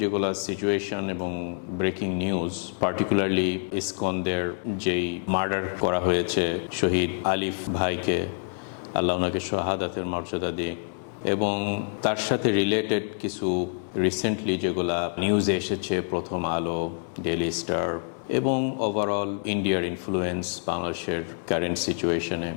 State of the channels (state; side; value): silent; right; digital silence